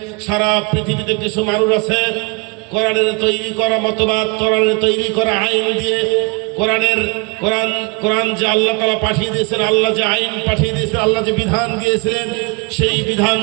সারা পৃথিবীতে কিছু মানুষ আছে কোরআনের তৈরি করা মতবাদ, কোরআনের তৈরি করা আইন দিয়ে কোরআন যে আল্লাহ তাআলা পাঠিয়ে দিয়েছেন, আল্লাহ যে আইন পাঠিয়ে দিয়েছেন, আল্লাহ যে বিধান দিয়েছিলেন, সেই বিধান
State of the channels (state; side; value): quieter; left; 29.2 dB